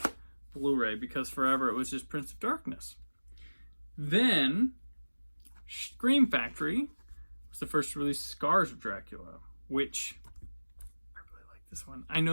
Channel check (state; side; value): inverted; both; correlation -1.00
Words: Blu-ray, because forever it was just Prince of Darkness. Then, Scream Factory was the first to release Scars of Dracula, which I really like this one. I